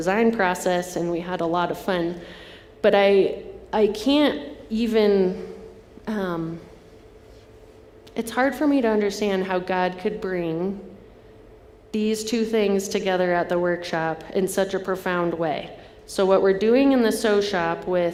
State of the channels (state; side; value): identical; both; correlation 1.00